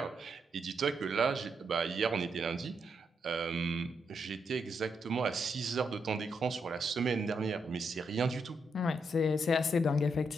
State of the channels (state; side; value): normal; both; correlation 0.80